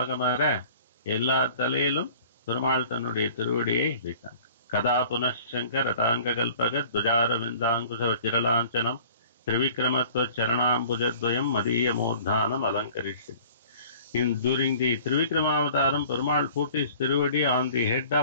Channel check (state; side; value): inverted; both; correlation -0.48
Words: Ella Talelum Perumal Tanude Tiruvadiye Vitan. Kada Punashankar Ratanga Kalpagat Dujara Vindankusa Chiralanchanam Trivikramatva Charanambujadvayam Madhiya Murdhanam Alankarishit. During the Trivikramavataram, Perumal put his Tiruvadi on the head